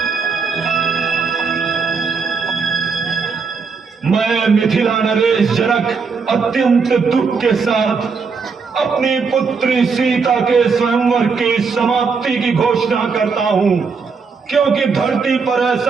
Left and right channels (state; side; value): quieter; left; 5.2 dB